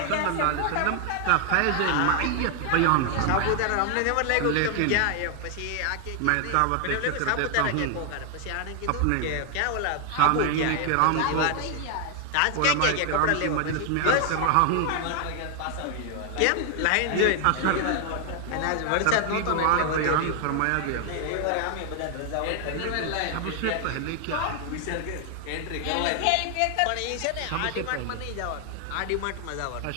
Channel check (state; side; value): different; both; correlation 0.00